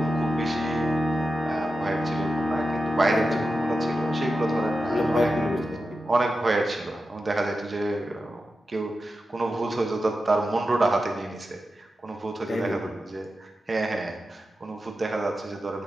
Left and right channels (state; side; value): normal; both; correlation 0.91